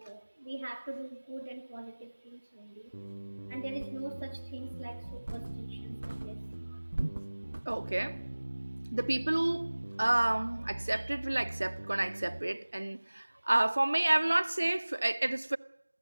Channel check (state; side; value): inverted; both; correlation -1.00